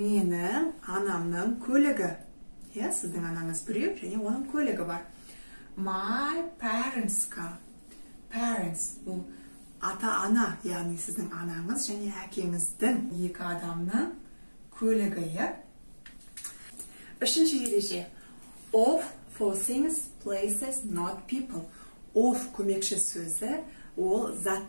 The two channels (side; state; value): both; inverted; correlation -1.00